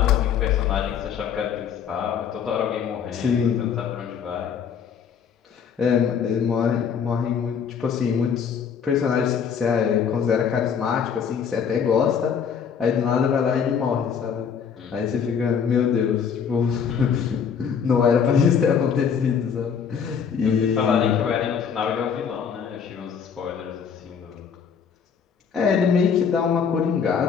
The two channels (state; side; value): quieter; right; 7.1 dB